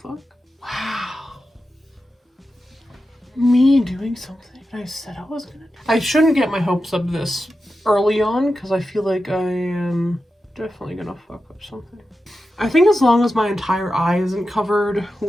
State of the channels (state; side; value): normal; both; correlation 0.91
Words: Wow. Me doing something I said I was gonna do. I shouldn't get my hopes up this early on because I feel like I am definitely gonna fuck up something. I think as long as my entire eye isn't covered